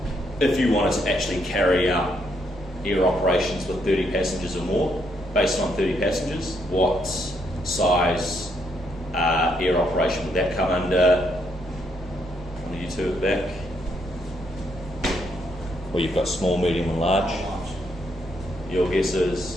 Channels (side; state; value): both; normal; correlation 0.75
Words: if you wanted to actually carry out air operations with 30 passengers or more, based on 30 passengers, what size air operation would that come under? One of you two at the back. Well, you've got small, medium and large. Your guess is?